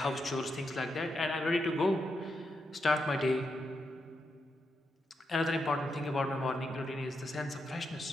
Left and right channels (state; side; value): normal; both; correlation 0.84